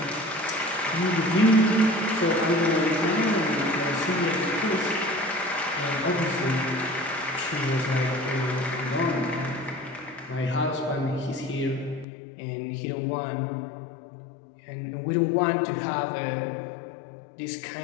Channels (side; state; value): right; drops out; at 12.1 s